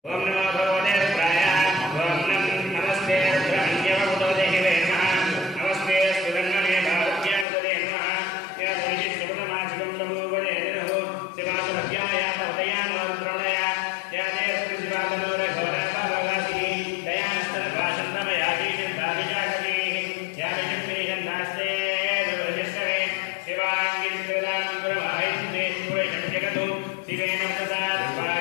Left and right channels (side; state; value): right; drops out; at 7.5 s